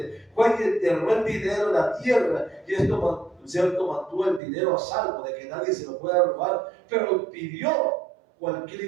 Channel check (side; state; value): left; drops out; at 4.4 s